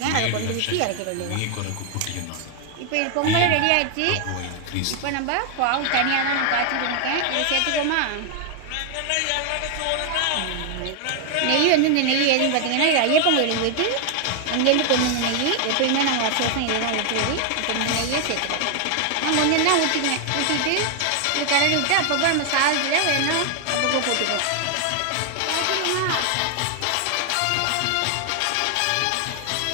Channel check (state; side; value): different; both; correlation 0.00